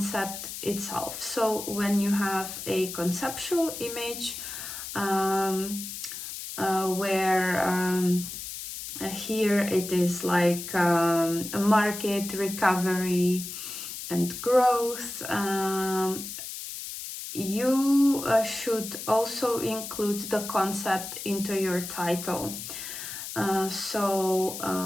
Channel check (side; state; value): left; noise; hiss, 8 dB below the sound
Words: itself. So when you have a conceptual image where here it is like a market recovery and growth, you should also include the concept into your title.